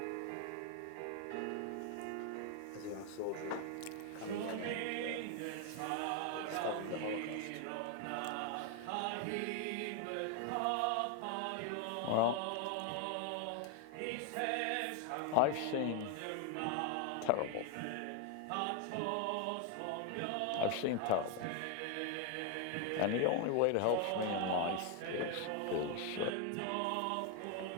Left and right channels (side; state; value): both; different; correlation 0.01